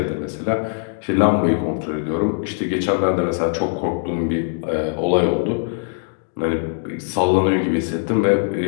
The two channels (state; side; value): silent; right; digital silence